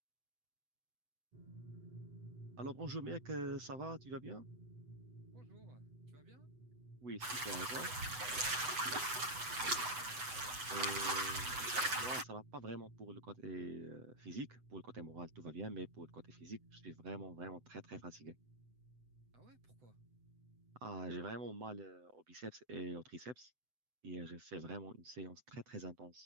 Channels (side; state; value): left; late; 7.9 ms